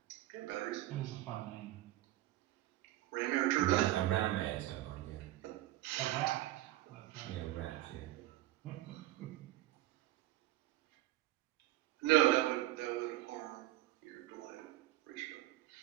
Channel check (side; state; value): left; quieter; 15.8 dB